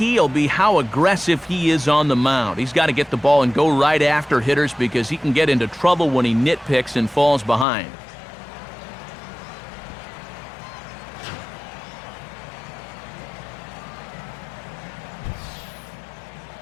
will be how aggressive he is on the mound. He's got to get the ball and go right after hitters because he can get into trouble when he nitpicks and falls behind.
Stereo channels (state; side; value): drops out; right; at 7.7 s